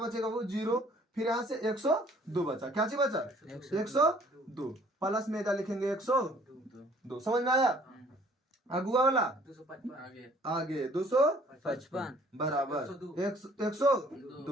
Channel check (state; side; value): normal; both; correlation 0.57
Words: वो 0। फिर यहाँ से 102 बचा। क्या चीज बचा? 102 प्लस में क्या लिखेंगे 102। समझ में आया? अगुआ वाला आगे 255 बराबर